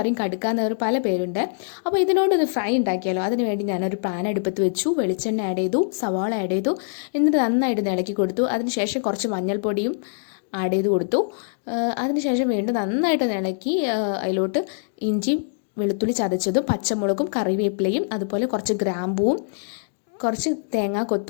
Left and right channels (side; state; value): right; silent; digital silence